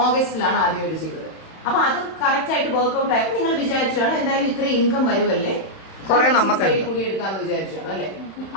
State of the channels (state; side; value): late; right; 31 ms